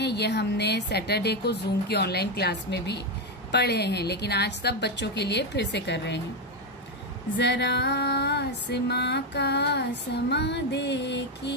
ये हमने सैटरडे को जूम की ऑनलाइन क्लास में भी पढ़े हैं, लेकिन आज सब बच्चों के लिए फिर से कर रहे हैं। जरा आसमां का समा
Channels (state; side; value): normal; both; correlation 0.08